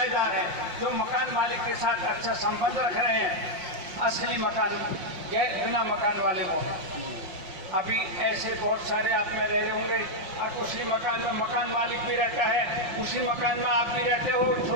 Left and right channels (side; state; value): left; late; 5.6 ms